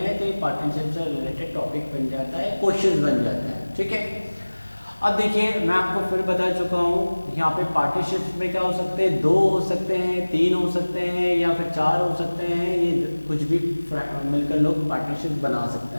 तो ये पार्टनरशिप से रिलेटेड टॉपिक बन जाता है, क्वेश्चन बन जाता है। ठीक है, अब देखिए मैं आपको फिर बता चुका हूँ, यहाँ पे पार्टनरशिप में क्या हो सकते हैं, 2 हो सकते हैं, 3 हो सकते हैं या फिर 4 हो सकते हैं। ये कुछ भी मिलकर लोग पार्टनरशिप बना सकते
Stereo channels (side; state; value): both; inverted; correlation -1.00